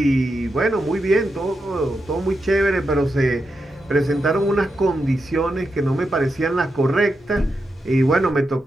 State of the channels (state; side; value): normal; both; correlation 0.86